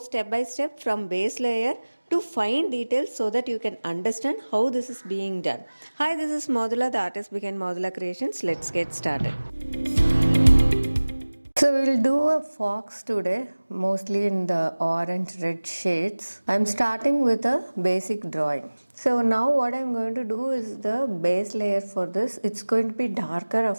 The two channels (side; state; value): both; inverted; correlation -1.00